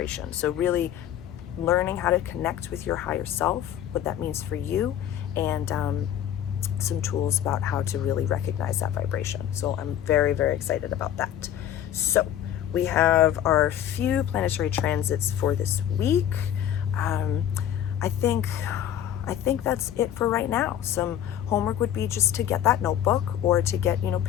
So really learning how to connect with your higher self, what that means for you, and some tools about how to really recognize that vibration. So I'm very, very excited about that. So we have our few planetary transits for this week. I think I think that's it for right now. Some homework would be just to get that notebook, or to get,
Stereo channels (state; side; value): quieter; right; 10.7 dB